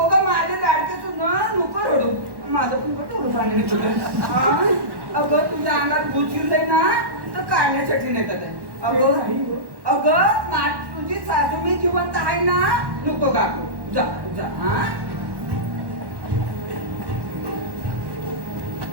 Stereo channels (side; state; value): left; late; 1.1 ms